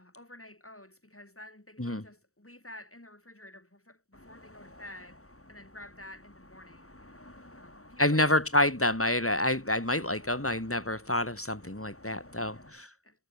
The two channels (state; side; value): late; right; 0.64 ms